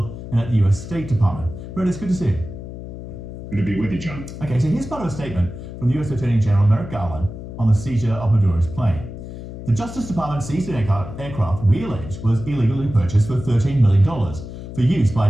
and at the US State Department. Brett, it's good to see you. Good to be with you, John. Okay, so here's part of a statement from the US Attorney General Merrick Garland on the seizure of Maduro's plane. The Justice Department seized an aircraft we allege was illegally purchased for $13 million for use by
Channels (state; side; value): noise; left; hum, 11 dB below the sound